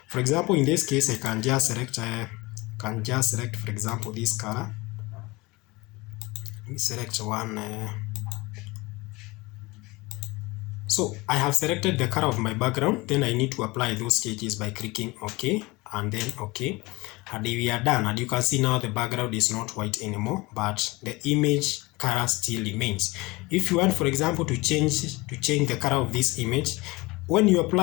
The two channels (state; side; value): quieter; right; 23.1 dB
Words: For example, in this case, I can just select for example, this color. Let me select one. So I have selected the color of my background. Then I need to apply those changes by clicking OK and then OK. And we are done, and you can see now the background is not white anymore, but the image color still remains. If you want, for example, to change the color of this image, when you